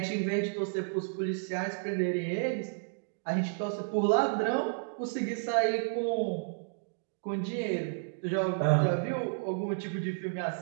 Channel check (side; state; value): left; silent; digital silence